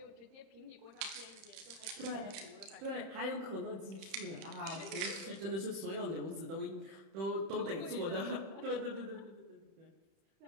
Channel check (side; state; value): left; late; 31 ms